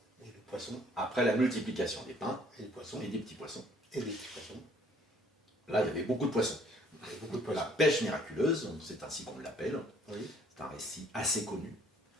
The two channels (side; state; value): both; normal; correlation 0.60